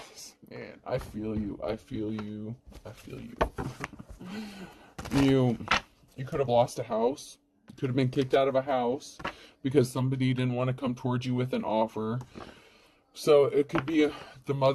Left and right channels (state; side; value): identical; both; correlation 1.00